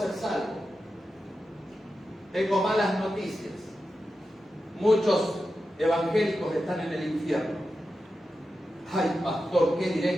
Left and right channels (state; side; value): normal; both; correlation 0.91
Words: salvo. Tengo malas noticias. Muchos evangélicos están en el infierno. Ay, pastor, qué